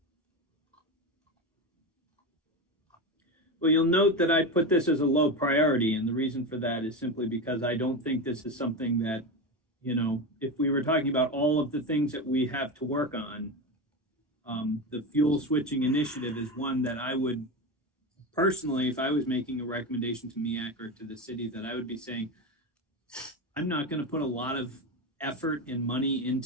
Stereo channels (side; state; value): both; normal; correlation 0.19